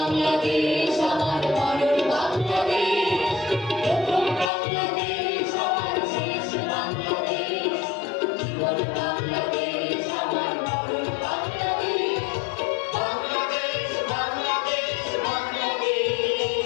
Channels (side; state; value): right; drops out; at 4.5 s